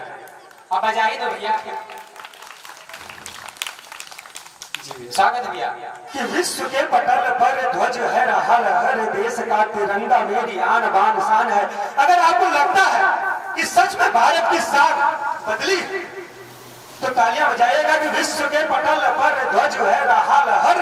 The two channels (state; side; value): identical; both; correlation 1.00